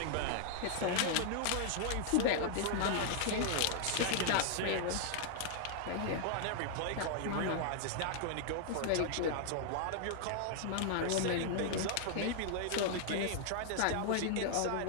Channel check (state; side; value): different; both; correlation -0.01